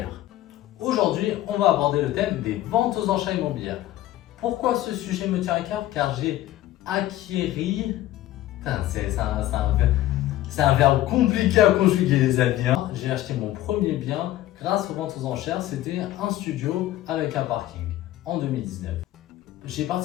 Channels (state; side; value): quieter; right; 14.6 dB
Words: Aujourd'hui, on va aborder le thème des ventes aux enchères immobilières. Pourquoi ce sujet me tient à cœur? Car j'ai acquéri... Putain, c'est un verbe compliqué à conjuguer, les amis. J'ai acheté mon premier bien grâce aux ventes aux enchères. C'était un studio avec un parking en 2019. J'ai